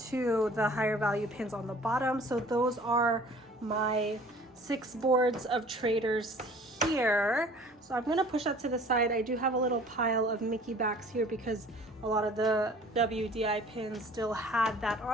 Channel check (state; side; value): normal; both; correlation 0.49